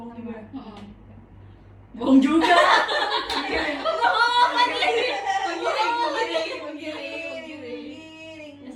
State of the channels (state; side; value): identical; both; correlation 1.00